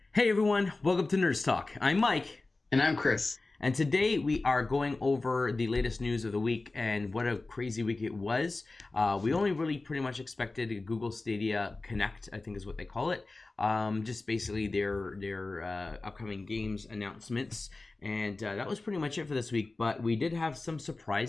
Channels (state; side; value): quieter; right; 3.3 dB